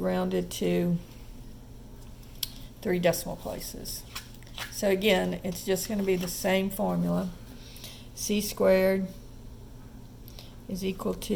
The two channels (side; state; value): both; identical; correlation 1.00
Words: to 3 decimal places. So again, it's just going to be the same formula. C squared is equal